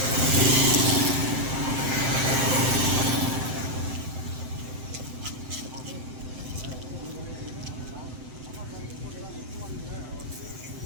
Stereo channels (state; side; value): late; left; 7.8 ms